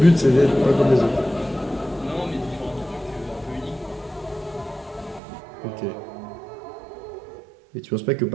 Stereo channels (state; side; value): drops out; left; at 5.2 s